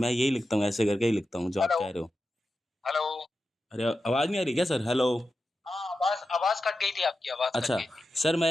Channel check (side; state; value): both; normal; correlation 0.91